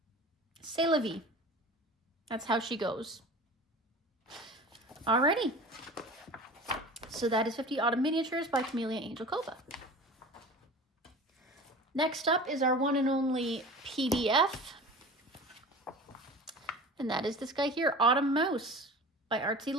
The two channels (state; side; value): normal; both; correlation 0.37